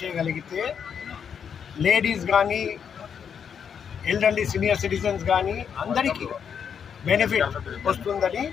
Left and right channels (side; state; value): right; quieter; 7.4 dB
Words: చేయగలిగితే లేడీస్ కానీ ఎల్డర్లీ సీనియర్ సిటిజన్స్ కానీ అందరికీ బెనిఫిట్ వస్తుందని